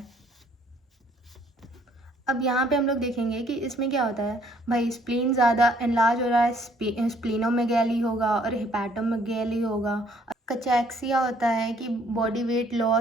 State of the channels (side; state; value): both; normal; correlation 0.63